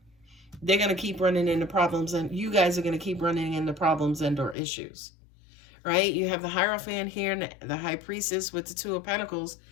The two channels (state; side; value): drops out; right; at 4.5 s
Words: they're going to keep running into problems, and you guys are going to keep running into problems and or issues, right? You have the Hierophant here and the High Priestess with the Two of Pentacles.